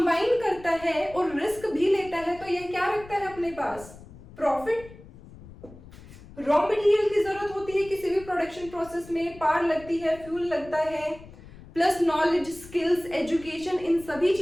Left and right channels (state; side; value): noise; left; rumble, 19 dB below the sound